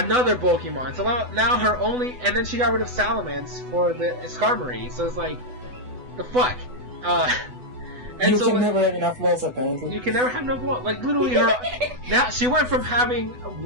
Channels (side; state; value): left; late; 8.0 ms